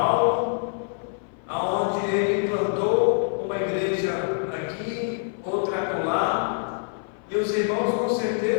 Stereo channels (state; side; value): silent; right; 57 dB below the other